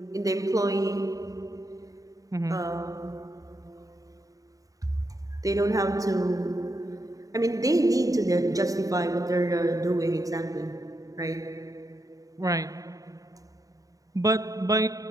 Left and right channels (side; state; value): left; late; 0.17 ms